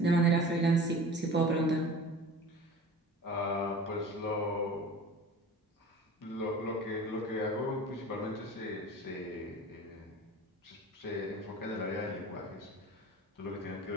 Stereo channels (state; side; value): normal; both; correlation 0.40